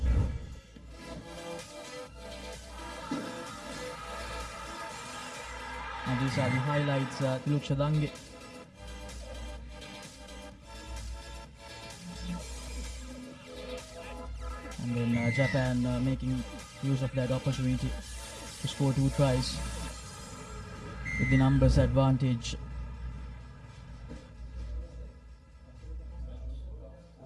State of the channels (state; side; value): identical; both; correlation 1.00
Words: And these are the highlights. Tiluk Shadange. And then Japan making use of that opportunity to score 2 tries with the numbers advantage.